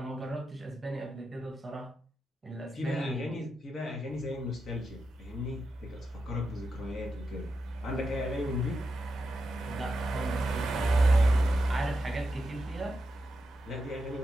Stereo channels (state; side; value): normal; both; correlation 0.87